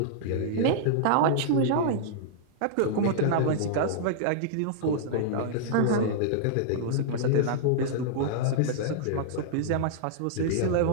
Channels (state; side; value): different; both; correlation -0.02